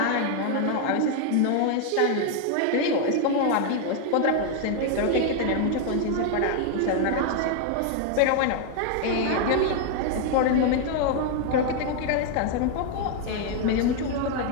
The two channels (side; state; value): both; different; correlation 0.00